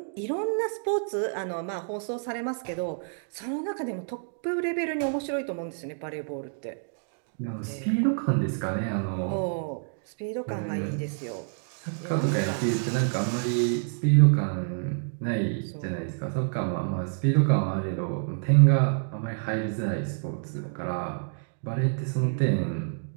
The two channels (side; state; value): left; silent; digital silence